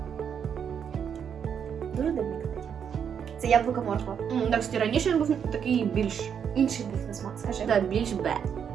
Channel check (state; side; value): quieter; left; 7.7 dB